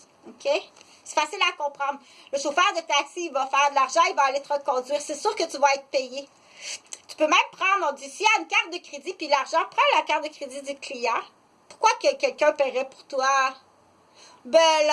OK? C'est facile à comprendre. Le chauffeur de taxi, il va faire de l'argent, il va aller te reconduire. C'est sûr que tu vas être payé. Tu peux même prendre, on dit, s'il y a une carte de crédit, puis l'argent, prends la carte de crédit du client. Pourquoi que quelqu'un paierait pour toi? Bel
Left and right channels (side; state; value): both; identical; correlation 1.00